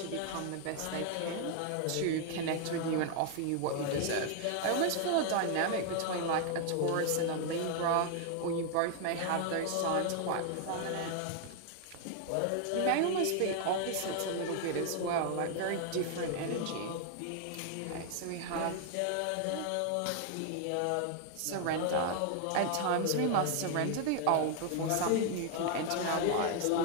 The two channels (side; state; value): both; different; correlation 0.00